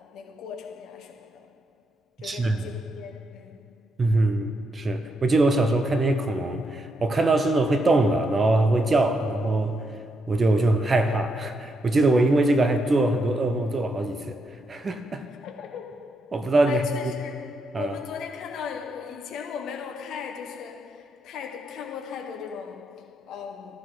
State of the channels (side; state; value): both; normal; correlation 0.81